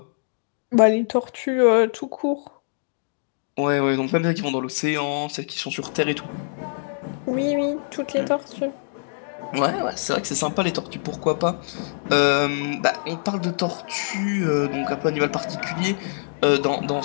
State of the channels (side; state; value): right; silent; digital silence